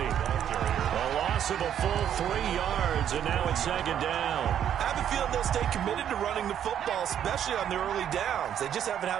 A loss of a full 3 yards, and now it's 2nd down. I have a feeling they'll stay committed to running the football, especially on the early downs. They just haven't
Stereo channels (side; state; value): left; quieter; 9.7 dB